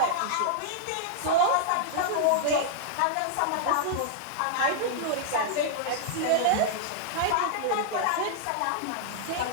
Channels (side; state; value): both; different; correlation -0.01